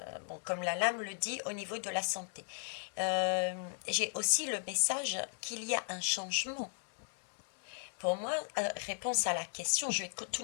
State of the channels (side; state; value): right; silent; digital silence